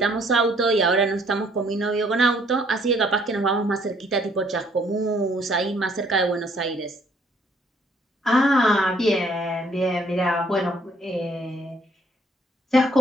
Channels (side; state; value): both; normal; correlation 0.64